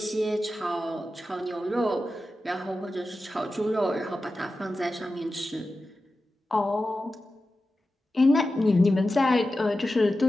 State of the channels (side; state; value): both; normal; correlation 0.93